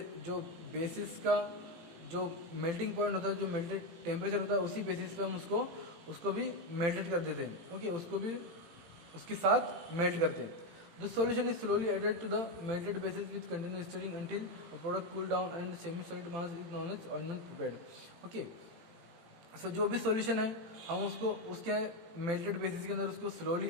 जो बेसिस का जो मेल्टिंग पॉइंट होता है, जो मेल्टेड टेम्परेचर होता है, उसी बेसिस पे हम उसको भी मेल्टेड कर देते हैं, ओके, उसको भी उसके साथ मेल्ट करते हैं। The solution is slowly added to the melted basis with continuous stirring until a product cool down and semi-solid mass is known as ointment prepared. Okay. सो जो भी सॉल्यूशन है हम उसको उसके मेल्टेड बेसिस के अंदर उसको स्लोली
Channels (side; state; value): left; late; 18 ms